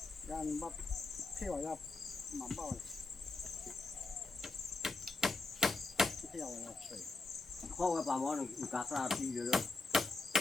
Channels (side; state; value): right; quieter; 3.6 dB